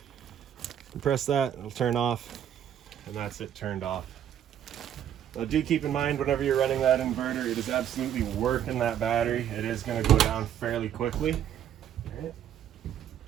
And press that, it'll turn off, and that's it turned off. Now do keep in mind, whenever you're running that inverter, it is absolutely working that battery. It is gonna go down fairly quickly, all right?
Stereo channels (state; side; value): quieter; left; 10.1 dB